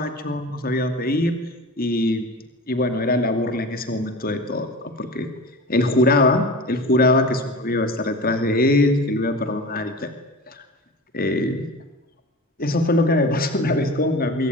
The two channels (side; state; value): both; normal; correlation 0.33